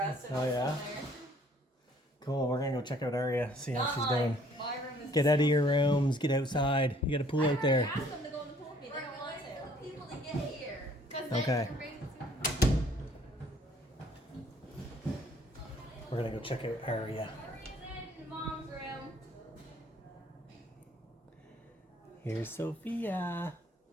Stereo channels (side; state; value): both; normal; correlation 0.59